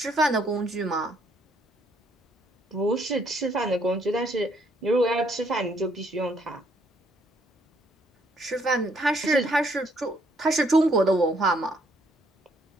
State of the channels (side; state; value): both; normal; correlation 0.68